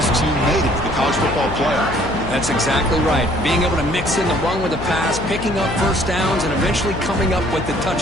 team made it to the college football playoff. That's exactly right. Being able to mix in the run with the pass, picking up first downs, and eventually coming up with the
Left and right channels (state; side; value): noise; left; hum, 8 dB below the sound